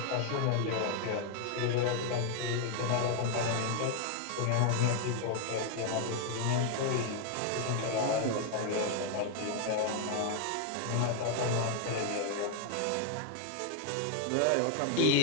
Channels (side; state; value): both; different; correlation 0.01